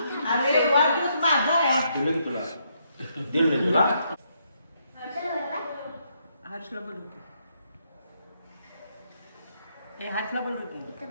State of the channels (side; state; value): both; inverted; correlation -0.75